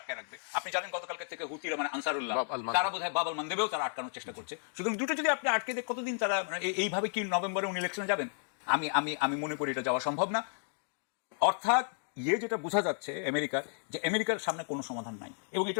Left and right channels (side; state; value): right; silent; digital silence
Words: রাখবে। আপনি জানেন গতকালকে থেকে হুতিরা মানে আনসারুল্লাহ, তারা বোধহয় বাব আল মানদেবেও তারা আটকানোর চেষ্টা করছে। সুতরাং দুটো যদি আপনি আটকে দেখ, কতদিন তারা এইভাবে কি নভেম্বরে উনি ইলেকশনে যাবেন? আমি মনে করি এটা যাওয়া সম্ভব না। অর্থাৎ যেটা বোঝা যাচ্ছে আমেরিকার, যে আমেরিকার সামনে কোনো সমাধান নাই এবং